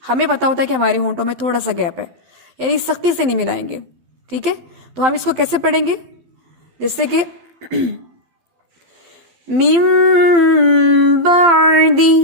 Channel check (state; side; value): late; left; 12 ms